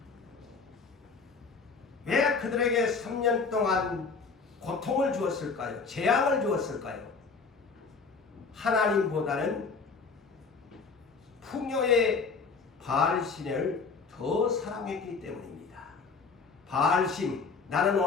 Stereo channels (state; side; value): quieter; right; 4.8 dB